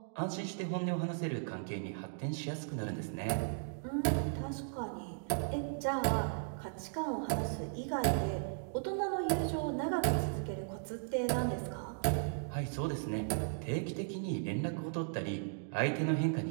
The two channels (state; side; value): silent; left; digital silence